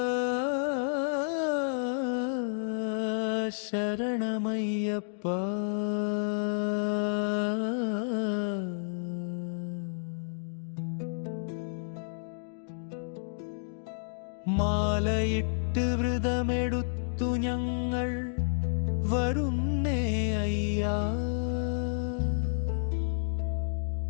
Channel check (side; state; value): right; silent; digital silence